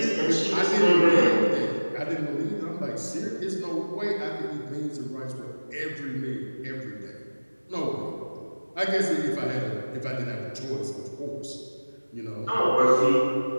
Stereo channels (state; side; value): inverted; both; correlation -1.00